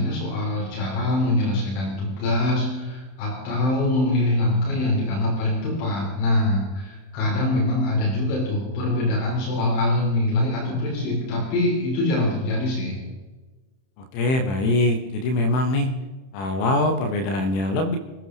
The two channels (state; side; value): late; right; 31 ms